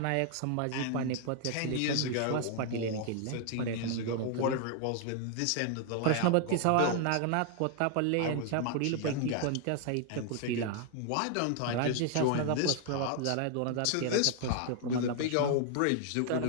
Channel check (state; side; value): different; both; correlation 0.00